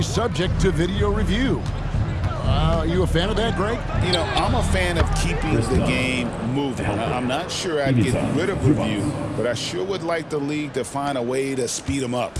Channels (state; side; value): identical; both; correlation 1.00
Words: subject to video review. Are you a fan of that, Greg? You know, I'm a fan of keeping the game moving. I'm not sure I'd get rid of review, but I sure would like the league to find a way to speed them up.